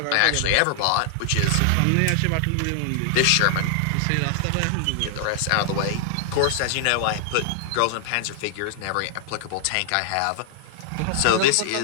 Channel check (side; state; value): both; different; correlation -0.01